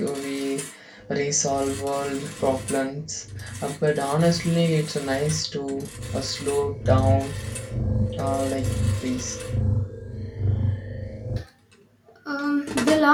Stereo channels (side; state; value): both; identical; correlation 1.00